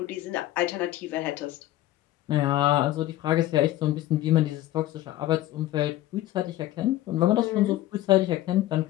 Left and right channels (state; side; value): quieter; right; 14.8 dB